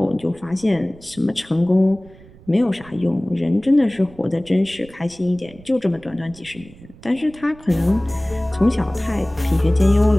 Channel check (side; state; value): right; noise; rumble, 22 dB below the sound